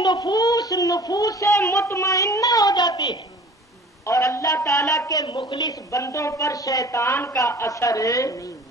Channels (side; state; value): both; normal; correlation 0.45